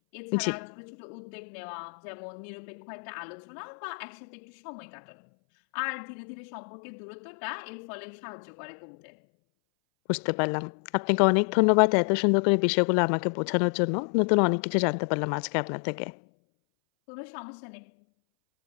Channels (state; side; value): silent; right; 59 dB below the other